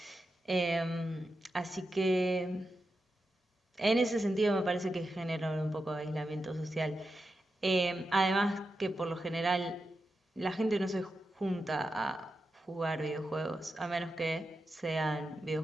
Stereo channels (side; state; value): both; normal; correlation 0.89